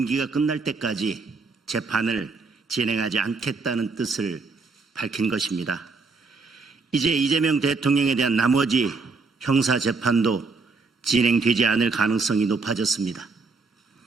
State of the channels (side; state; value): left; quieter; 4.1 dB